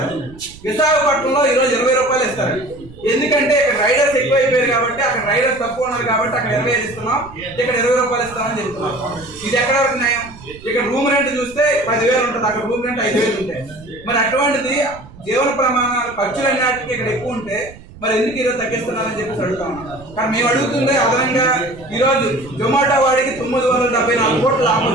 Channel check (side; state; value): right; noise; rumble, 20 dB below the sound